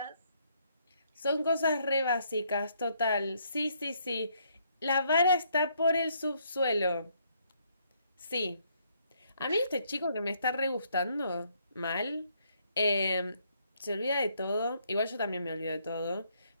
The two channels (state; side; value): inverted; both; correlation -0.70